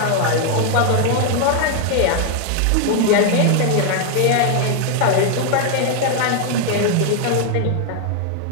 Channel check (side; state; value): both; different; correlation 0.01